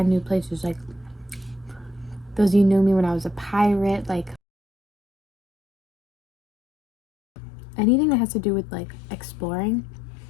new places. Like those of you knew me when I was a pirate, like anything that has to do with like exploring.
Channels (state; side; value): drops out; right; at 4.4 s